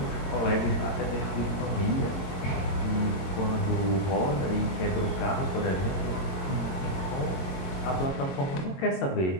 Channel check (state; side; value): late; right; 22 ms